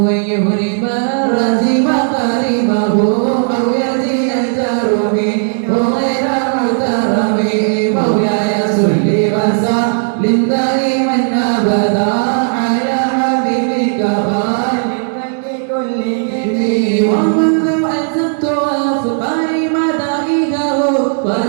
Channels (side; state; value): left; silent; digital silence